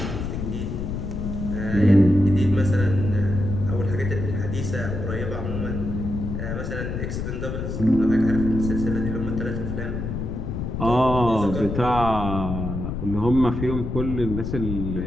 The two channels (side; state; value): left; noise; rumble, 4 dB below the sound